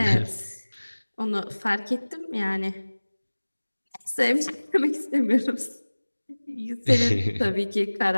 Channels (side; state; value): both; inverted; correlation -1.00